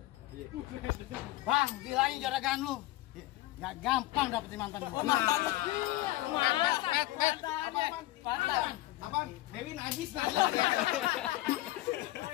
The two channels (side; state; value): right; quieter; 17.4 dB